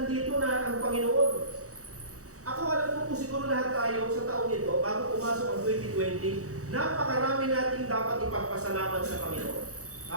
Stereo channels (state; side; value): late; left; 0.65 ms